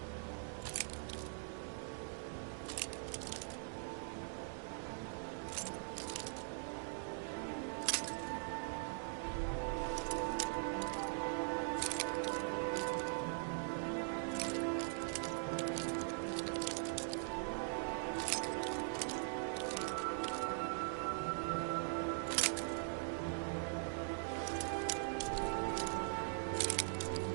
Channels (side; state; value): left; silent; digital silence